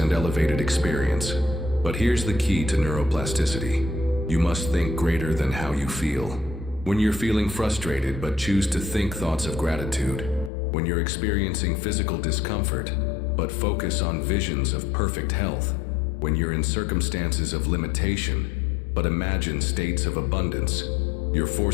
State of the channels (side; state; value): right; drops out; at 10.5 s